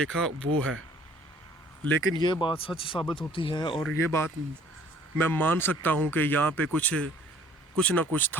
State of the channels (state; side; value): normal; both; correlation 0.55